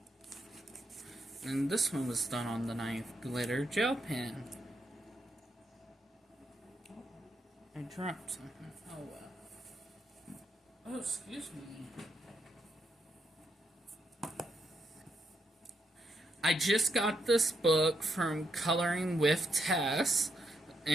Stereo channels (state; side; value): normal; both; correlation 0.79